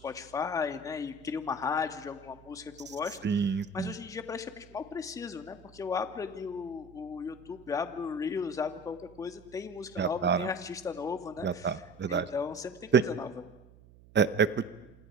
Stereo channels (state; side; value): noise; right; hum, 23 dB below the sound